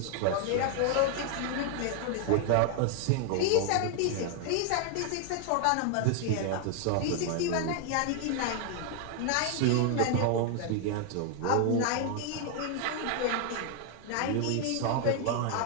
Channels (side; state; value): both; different; correlation 0.00